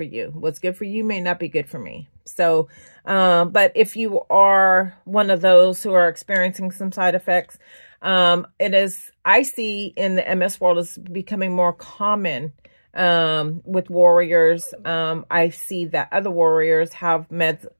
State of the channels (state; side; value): inverted; both; correlation -1.00